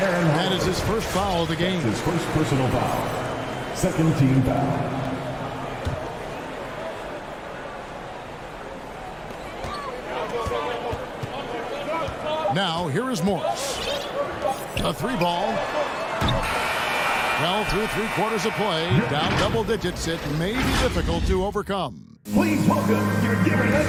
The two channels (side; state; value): both; identical; correlation 1.00